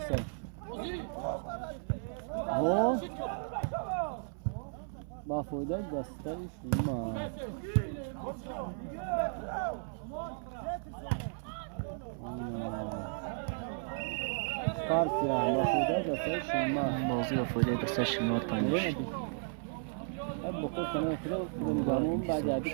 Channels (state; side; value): silent; left; 55 dB below the other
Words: او با فایده دستش شما. کارت یا با فایده دستش شما. بازی با فایده دستش شما تانیش. اب بخور کنه فیلم بعد بعدی